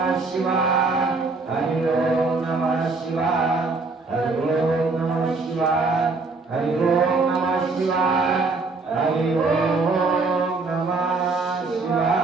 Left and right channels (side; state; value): left; quieter; 3.8 dB